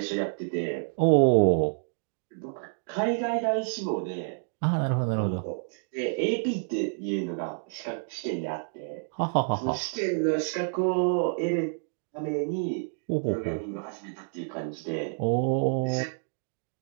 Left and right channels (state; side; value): silent; left; digital silence